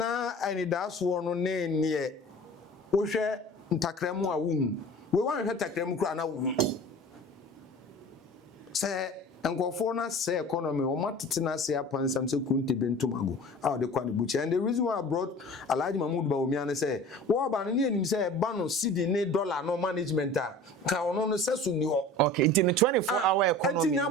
ani das wo no na nie. Wo hwe ntakremu a wo hu. We wan hwe takremu kura na wo hu. Se nkofo na say economy o matete na say apansam say kunte bentumago how the kwan buchi and the reason why I brought Alhaji Mahmood Bawumia na say wo ba no ne anim say ba no cedi ne dollar no management a ka ono no say so ni ho. Okay, in the 24-hour economy enti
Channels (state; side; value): normal; both; correlation 0.41